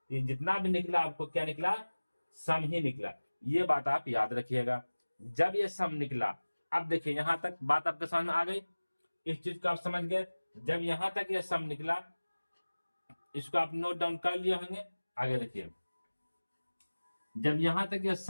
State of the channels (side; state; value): both; inverted; correlation -1.00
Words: ये जितना भी निकला आपको क्या निकला, सम ही निकला। ये बात आप याद रखिएगा जब ये सम निकला। अब देखिए यहां तक बात आपके समझ में आ गई, इस चीज को आप समझ गए। जब यहां तक ये सम निकला, इसको आप नोट डाउन कर लिए होंगे। आगे देखिए, जब यहां तक ये